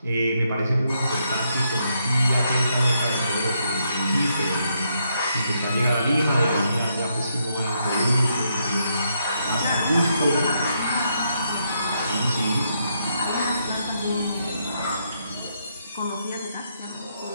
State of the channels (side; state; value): both; inverted; correlation -0.77